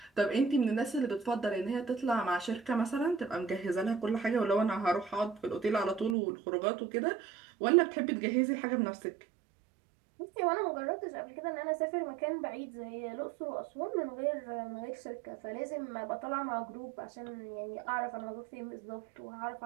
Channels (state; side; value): drops out; left; at 6.2 s